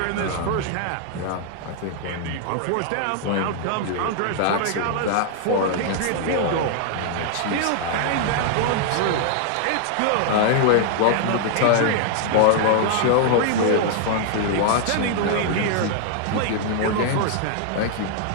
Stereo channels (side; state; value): both; different; correlation -0.01